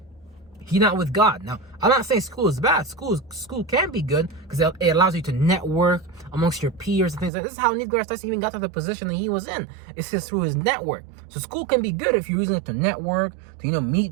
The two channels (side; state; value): left; drops out; at 7.3 s